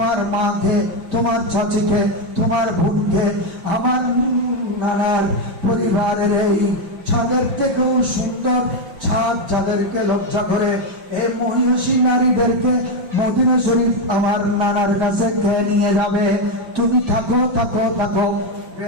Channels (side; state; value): left; late; 5.6 ms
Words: মাকে, তোমার চাচিকে, তোমার বোনকে, আমার নানার পরিবারের এই ছাদের থেকেও সুন্দর ছাদ যাদেরকে লজ্জা করে, এই মহিষী নারীদেরকে মদিনা শরীফ আমার নানার কাছে খেয়ে নিয়ে যাবে। তুমি থাকো থাকো থাকো।